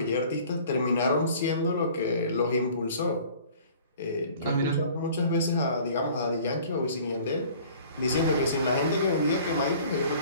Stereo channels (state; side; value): inverted; both; correlation -0.50